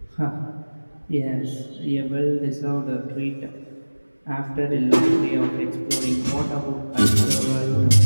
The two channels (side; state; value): both; inverted; correlation -1.00